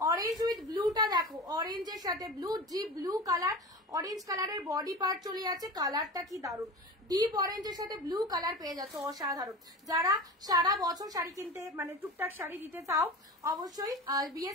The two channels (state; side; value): normal; both; correlation 0.31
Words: অরেঞ্জ উইথ ব্লুটা দেখো, অরেঞ্জের সাথে blue, deep blue colour, orange কালারের বডি পার্ট চলে যাচ্ছে, কালারটা কি দারুণ, ডিপ অরেঞ্জের সাথে ব্লু কালার পেয়ে যাচ্ছে, অসাধারণ। যারা সারা বছর শাড়ি কিনতে মানে টুকটাক শাড়ি দিতে চাও, অবশ্যই বিয়ে